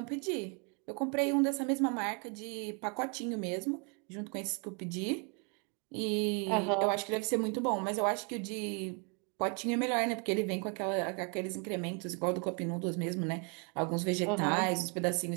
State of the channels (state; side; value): quieter; left; 35.9 dB